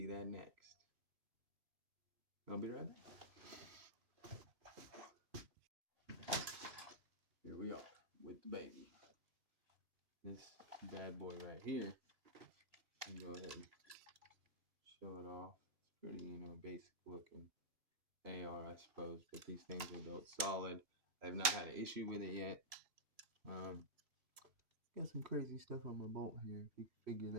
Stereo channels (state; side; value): late; left; 2.8 ms